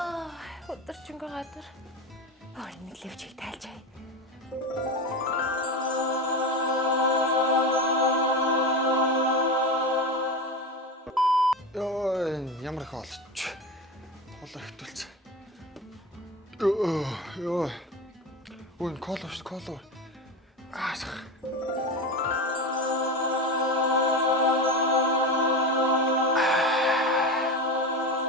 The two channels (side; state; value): both; normal; correlation 0.23